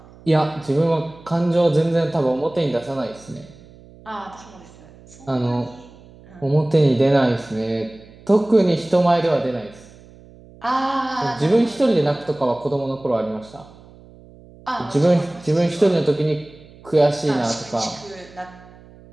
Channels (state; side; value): noise; right; hum, 23 dB below the sound